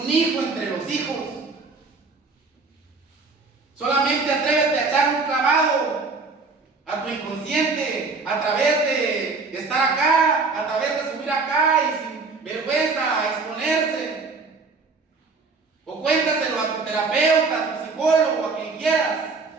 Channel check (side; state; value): left; quieter; 4.1 dB